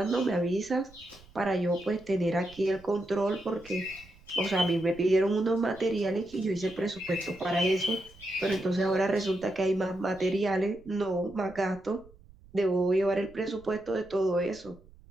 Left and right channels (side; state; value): right; noise; rumble, 24 dB below the sound